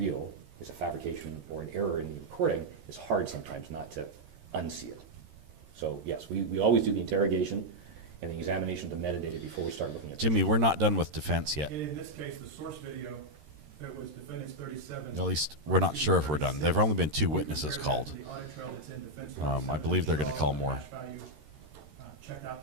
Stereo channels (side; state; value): left; late; 13 ms